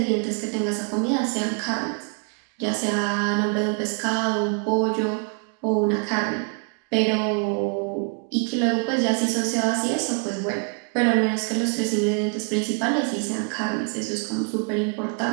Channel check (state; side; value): quieter; left; 37.1 dB